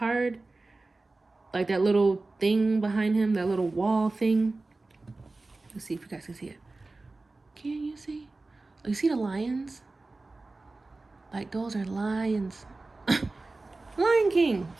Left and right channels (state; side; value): quieter; left; 3.3 dB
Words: like that little thing behind him, that little wall thing. Let's see if you guys can see it. Can you see? Oh, you see the lions? Like those are lions. Lion King.